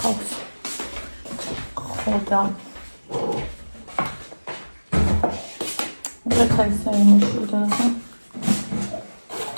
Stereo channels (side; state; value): both; inverted; correlation -1.00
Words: ხო და რა ხაისა იმუშავდა რა.